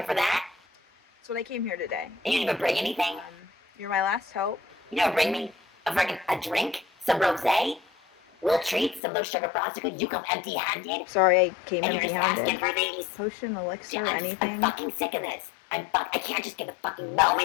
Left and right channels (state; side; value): drops out; right; at 9.0 s